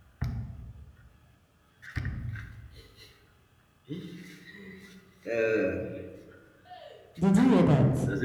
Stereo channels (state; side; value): identical; both; correlation 1.00